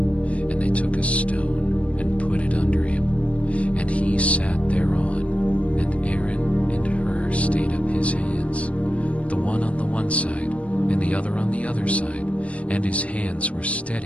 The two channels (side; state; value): right; late; 0.064 ms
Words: they took a stone and put it under him, and he sat thereon, and Aaron and Hur stayed up his hands, the one on the one side, and the other on the other side, and his hands were